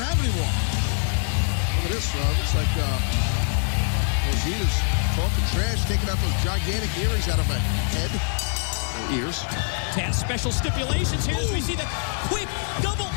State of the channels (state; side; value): silent; right; 57 dB below the other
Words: have anymore. Look at this, looks like Rosita's talking trash, taking out those gigantic earrings out of her head. Ears. Taz, special stipulations here as we see the quick double